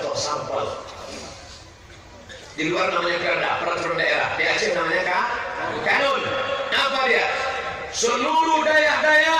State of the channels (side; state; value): both; identical; correlation 1.00